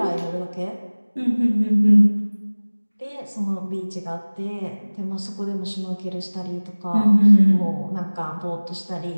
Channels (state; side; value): inverted; both; correlation -1.00